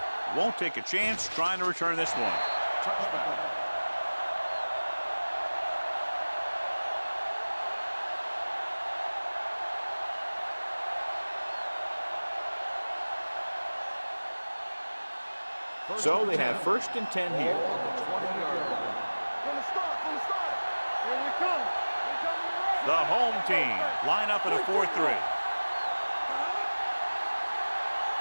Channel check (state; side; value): inverted; both; correlation -1.00